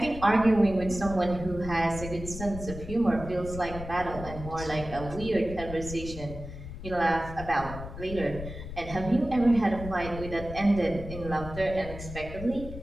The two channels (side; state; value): left; noise; rumble, 10 dB below the sound